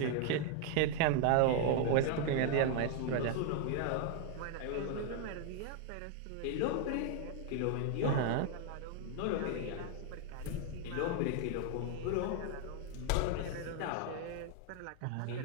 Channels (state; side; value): different; both; correlation 0.00